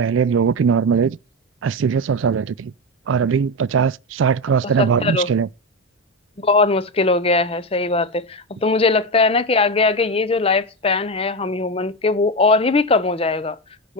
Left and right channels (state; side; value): normal; both; correlation 0.14